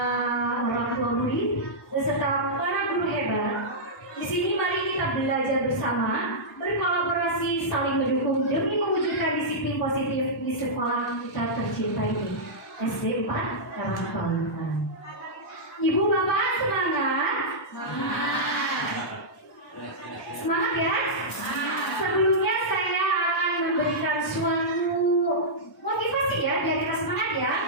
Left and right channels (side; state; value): both; normal; correlation -0.11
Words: orang tua murid beserta para guru hebat. Di sini mari kita belajar bersama, berkolaborasi, saling mendukung demi mewujudkan disiplin positif di sekolah kita tercinta ini, SD 4 Karangpawitan. Ibu bapak semangat? Semangat ya? Sebelumnya saya akan memberikan suatu motivasi ya, biar kita semangat ya.